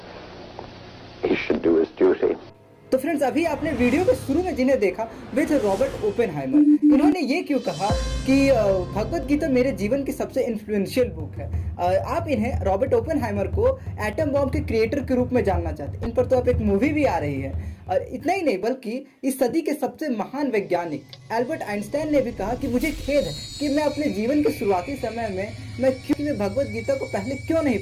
he should do his duty. तो friends, अभी आपने video के शुरू में जिन्हें देखा वे थे रॉबर्ट ओपेनहाइमर। इन्होंने ये क्यों कहा कि भगवत गीता मेरे जीवन की सबसे इन्फ्लुएंशियल बुक है। आप इन्हें रॉबर्ट ओपेनहाइमर को एटम बॉम्ब के क्रिएटर के रूप में जानना चाहते हैं। इन पर तो अब एक मूवी भी आ रही है। और इतना ही नहीं बल्कि इस सदी के सबसे महान वैज्ञानिक एल्बर्ट आइंस्टाइन ने भी कहा कि मुझे खेद है कि मैं अपने जीवन के शुरुआती समय में मैं भगवत गीता को पहले क्यों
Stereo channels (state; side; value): identical; both; correlation 1.00